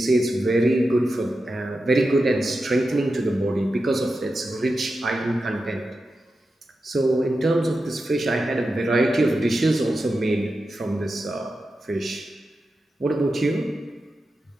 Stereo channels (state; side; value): normal; both; correlation 0.90